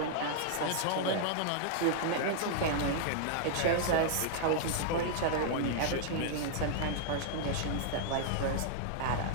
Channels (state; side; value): different; both; correlation -0.01